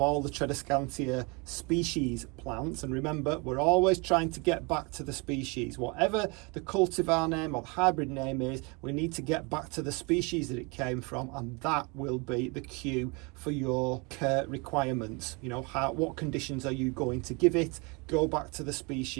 the Tradescantia species plants, and remember, we're always trying to get back to the species. Whatever the cultivar name or the hybrid name is, we need to get back to the species that it came from, and that will be the cue for your care requirements. You know, what conditions are you going to give it? Go back to the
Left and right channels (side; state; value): left; quieter; 29.8 dB